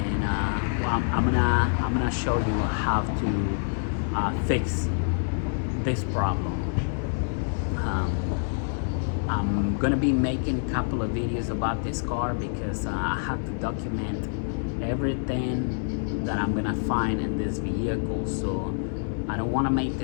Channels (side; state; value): right; silent; digital silence